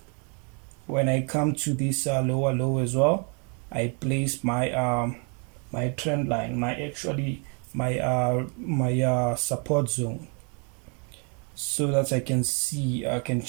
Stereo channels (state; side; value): quieter; left; 36.9 dB